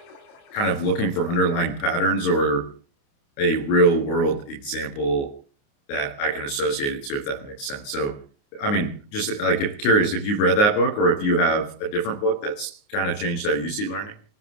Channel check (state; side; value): late; right; 29 ms